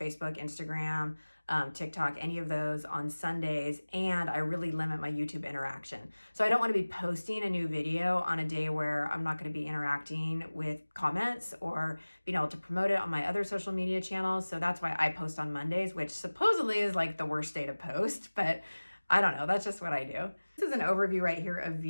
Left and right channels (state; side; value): inverted; both; correlation -1.00